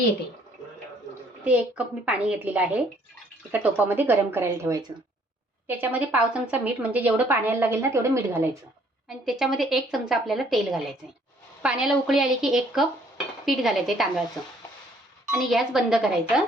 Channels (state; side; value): normal; both; correlation 0.62